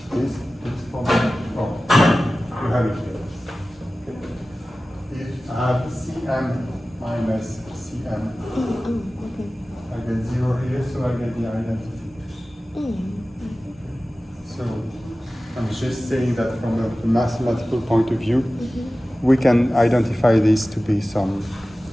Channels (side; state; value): both; normal; correlation 0.96